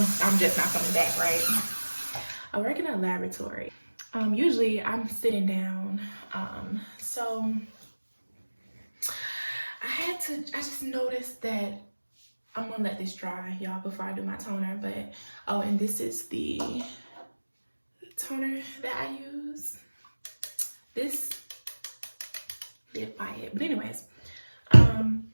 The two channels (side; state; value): both; inverted; correlation -1.00